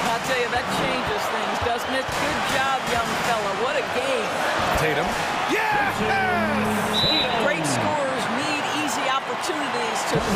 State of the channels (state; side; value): identical; both; correlation 1.00